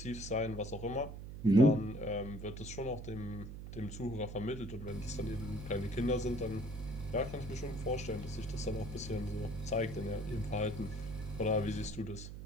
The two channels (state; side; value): noise; right; hum, 10 dB below the sound